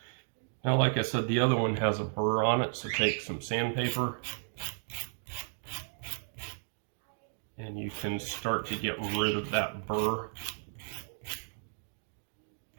Now, like I said, the other one has a burr on it, so take some sandpaper and you can start to get rid of that burr.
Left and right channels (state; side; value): silent; left; digital silence